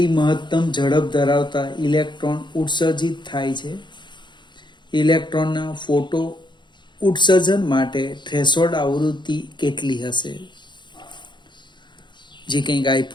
મહત્તમ ઝડપ ધરાવતા ઇલેક્ટ્રોન ઉત્સર્જિત થાય છે. ઇલેક્ટ્રોનના ફોટો ઉત્સર્જન માટે થ્રેશોલ્ડ આવૃત્તિ કેટલી હશે? જે કંઈક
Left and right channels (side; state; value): right; late; 0.22 ms